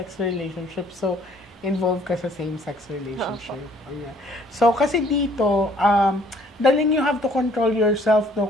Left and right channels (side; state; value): both; normal; correlation 0.60